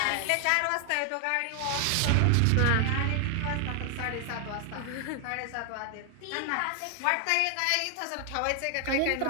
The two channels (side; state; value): both; different; correlation 0.00